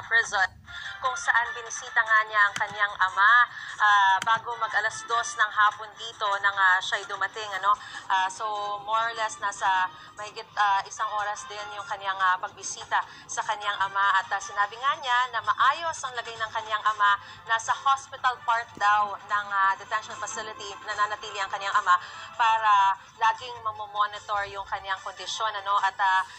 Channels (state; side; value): identical; both; correlation 1.00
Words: Prison, kung saan binisita nga niya ang kanyang ama bago mag-alas 2 ng hapon dito nang siya'y dumating. So more or less nasa mahigit isang oras din yung kanyang pagbisita sa kanyang ama, at sinabi nga niya na maayos ang lagay ng kanyang ama. Nasa hospital part daw ng detention facility nananatili ang kanyang ama para laging mamomonitor yung kanyang kondisyon. At